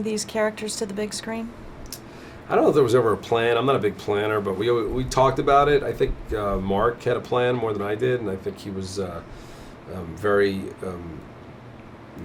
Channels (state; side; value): identical; both; correlation 1.00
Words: these characters to the big screen? I don't know if there was ever a plan. I'm not a big planner, but we talked about it. I think Mark had a plan more than I did, and I think he was very,